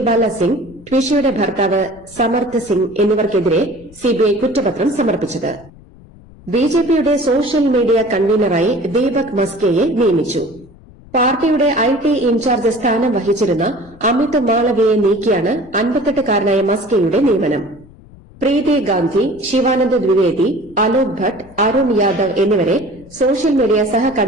സിംഗ്, ട്വിഷയുടെ ഭർത്താവ് സമർത്ഥ് സിംഗ് എന്നിവർക്കെതിരെ സിബിഐ കുറ്റപത്രം സമർപ്പിച്ചത്. ബിജെപിയുടെ സോഷ്യൽ മീഡിയ കൺവീനറായി ദീപക് മസ്കെയെ നിയമിച്ചു. പാർട്ടിയുടെ IT ഇൻചാർജ് സ്ഥാനം വഹിച്ചിരുന്ന അമിത് മാളവിയെ നീക്കിയാണ് 58-കാരനായ മസ്കെയുടെ നിയമനം. പ്രീതി ഗാന്ധി, ശിവാനന്ദ് ദ്വിവേദി, അലോക് ഭട്ട്, അരുൺ യാദവ് എന്നിവരെ സോഷ്യൽ മീഡിയ സഹ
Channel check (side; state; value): left; noise; rumble, 23 dB below the sound